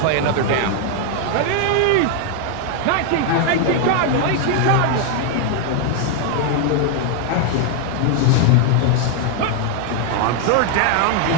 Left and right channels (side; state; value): both; different; correlation 0.00